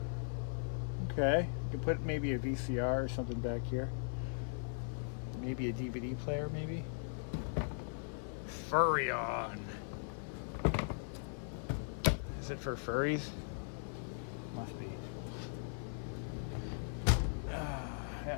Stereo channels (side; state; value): right; silent; 52 dB below the other